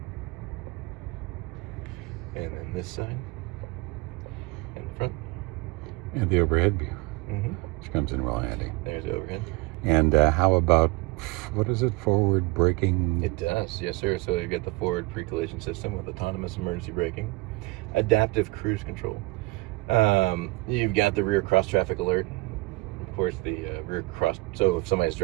And then this side. And the front. And the overhead view. Mm-hmm. Which comes in real handy. There's the overhead. And how about, what is it, forward braking? It does, yes sir. So you get the forward pre-collision system with autonomous emergency braking, adaptive cruise control. You've got the rear cross traffic alert. Of course, the rear cross, so if somebody's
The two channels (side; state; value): left; quieter; 23.3 dB